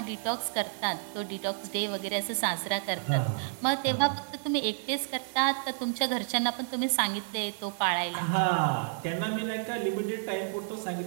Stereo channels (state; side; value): silent; left; 58 dB below the other